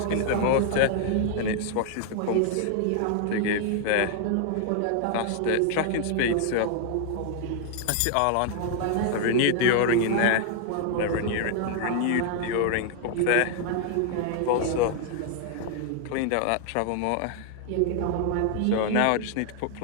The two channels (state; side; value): different; both; correlation 0.00